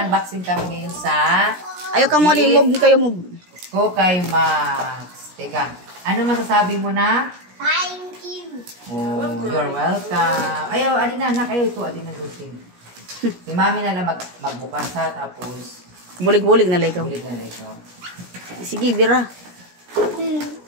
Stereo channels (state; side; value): late; left; 17 ms